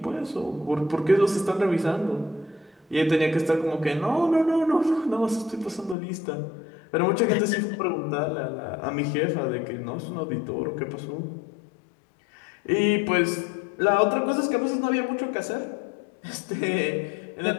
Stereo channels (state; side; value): drops out; right; at 6.0 s